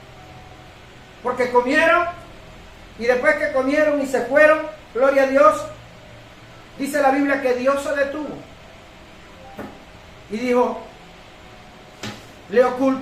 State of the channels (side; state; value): both; identical; correlation 1.00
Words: Porque comieron, y después que comieron y se fueron, gloria a Dios, dice la Biblia que Dios se detuvo. Y dijo, ¿le